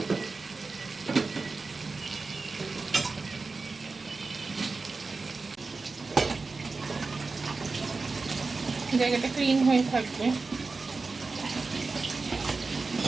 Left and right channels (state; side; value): quieter; left; 4.0 dB